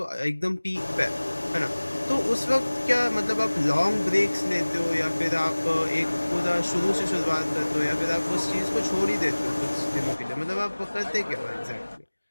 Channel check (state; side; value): inverted; both; correlation -1.00